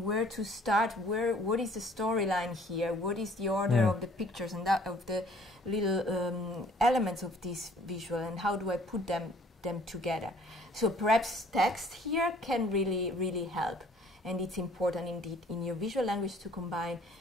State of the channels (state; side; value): normal; both; correlation 0.57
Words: where to start, what is the storyline here, what is the order of the pictures and that of the little elements of this visual, and how do I put them together. So perhaps text here can really, really help, and it's important indeed in your visual language to combine